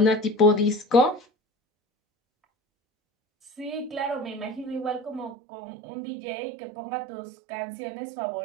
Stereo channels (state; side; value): drops out; left; at 5.4 s